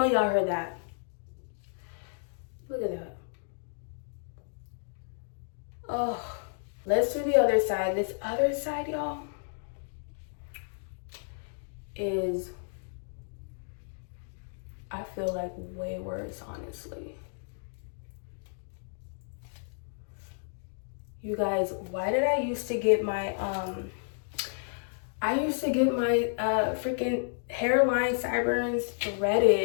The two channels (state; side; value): silent; right; digital silence